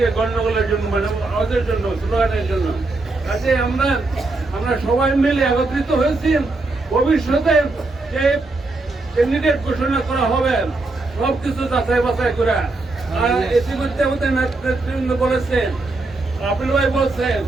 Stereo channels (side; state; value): left; quieter; 3.2 dB